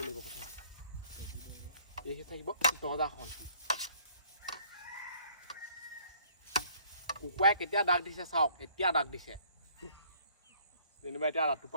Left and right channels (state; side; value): inverted; both; correlation -0.60